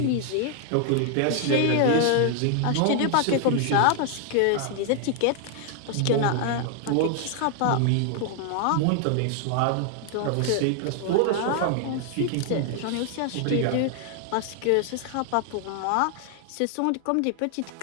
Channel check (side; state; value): both; different; correlation 0.00